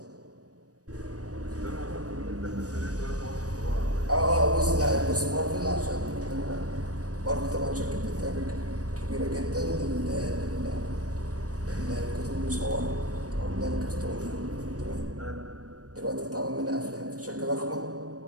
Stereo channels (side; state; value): left; late; 0.67 ms